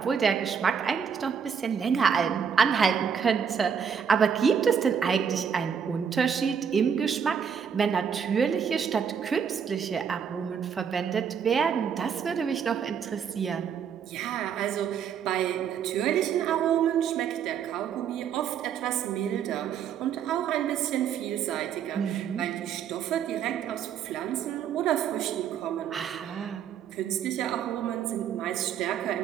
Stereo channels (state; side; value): quieter; left; 7.4 dB